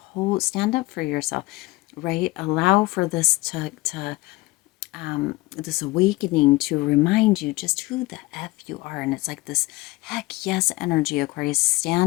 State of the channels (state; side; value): quieter; right; 21.4 dB